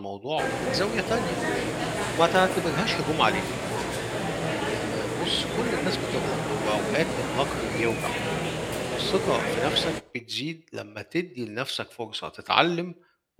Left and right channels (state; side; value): identical; both; correlation 1.00